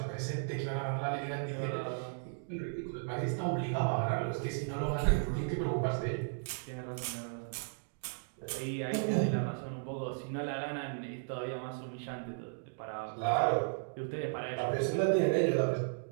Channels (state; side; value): silent; left; digital silence